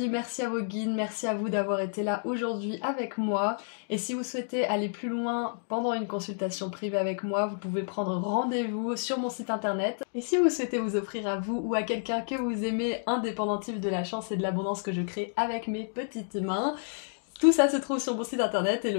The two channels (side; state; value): right; silent; digital silence